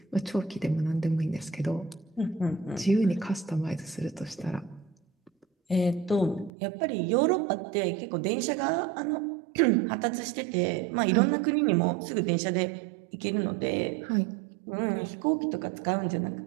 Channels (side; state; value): left; drops out; at 6.5 s